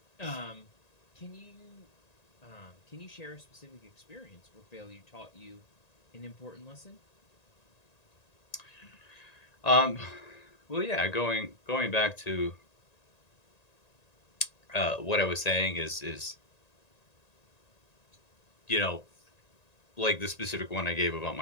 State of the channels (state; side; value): late; right; 1.9 ms